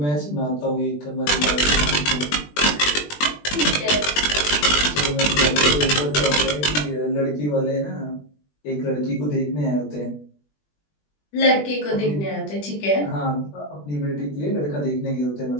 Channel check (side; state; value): right; late; 20 ms